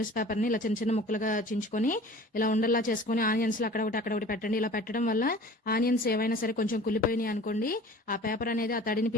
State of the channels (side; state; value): both; normal; correlation 0.44